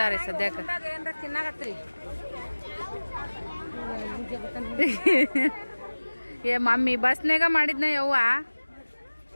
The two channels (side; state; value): both; inverted; correlation -1.00